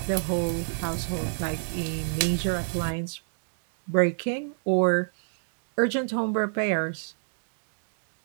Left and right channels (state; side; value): silent; left; digital silence